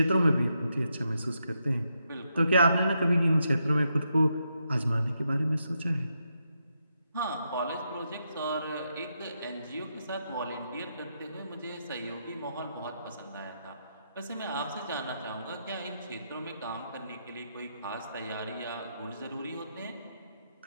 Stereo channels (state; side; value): inverted; both; correlation -0.82